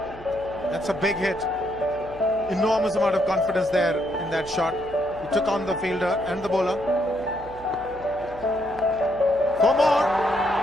That's a big hit. Enormous amount of confidence there in that shot. He took on the fielder and the bowler. 4 more.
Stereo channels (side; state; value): right; noise; hum, 18 dB below the sound